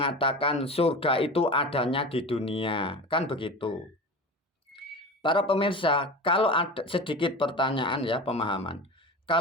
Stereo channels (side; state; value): both; normal; correlation 0.31